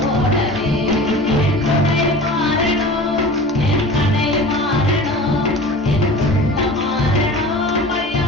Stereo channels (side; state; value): both; normal; correlation 0.38